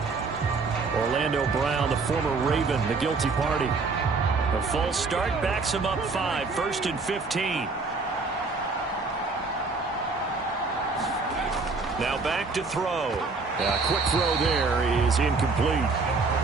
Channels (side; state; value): left; quieter; 4.1 dB